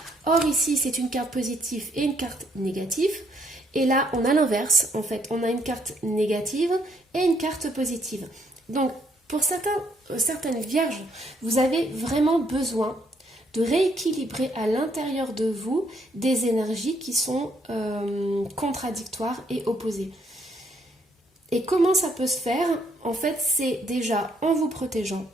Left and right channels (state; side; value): normal; both; correlation 0.70